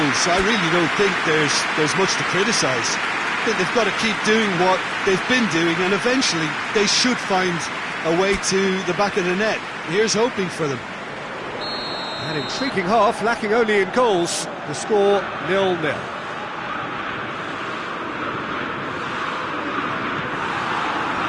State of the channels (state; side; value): identical; both; correlation 1.00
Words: I really don't think there's much to criticise. I think they've got to keep doing what they've been doing, and eventually they should find a way to the back of the net. Here's hoping for them. An intriguing half, lacking only in goals. The score 0-0.